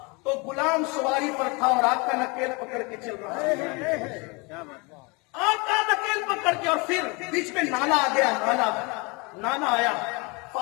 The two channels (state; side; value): quieter; right; 28.6 dB